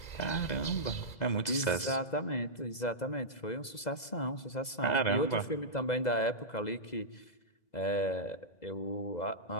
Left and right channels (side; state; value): right; late; 2.0 ms